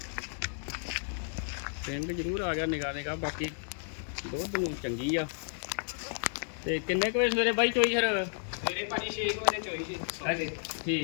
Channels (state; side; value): silent; right; digital silence